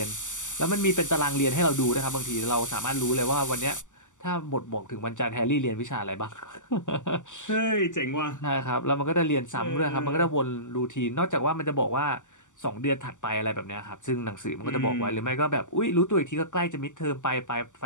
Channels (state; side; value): late; right; 0.86 ms